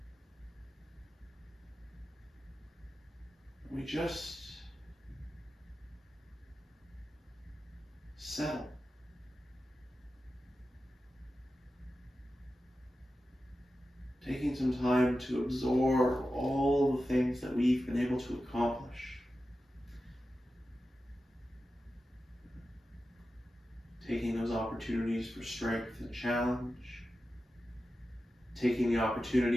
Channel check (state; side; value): normal; both; correlation 0.92